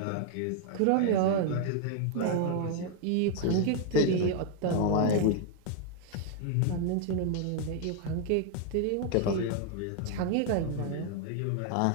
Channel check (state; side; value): different; both; correlation 0.00